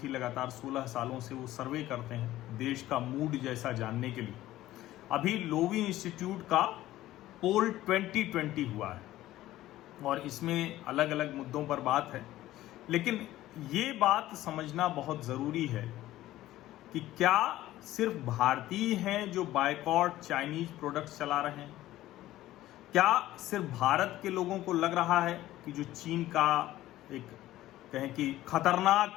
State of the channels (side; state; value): right; quieter; 15.1 dB